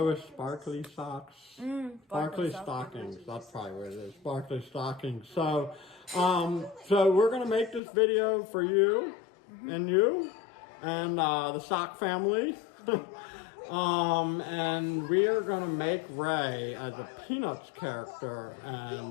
with Sparkly Socks. Sparkly Stockings, that's probably what it is. Sparkly Stockings. So, so we're gonna make this video for you. And you, and the Sock family, and we are going to make Ray as a Peanuts character,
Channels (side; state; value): right; drops out; at 7.8 s